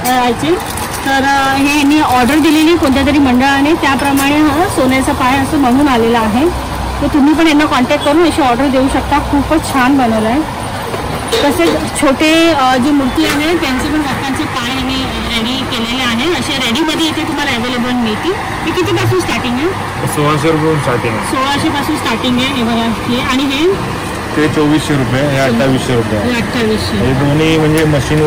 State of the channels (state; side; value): identical; both; correlation 1.00